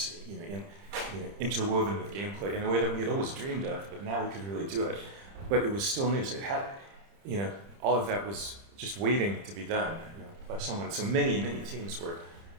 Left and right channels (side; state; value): left; late; 30 ms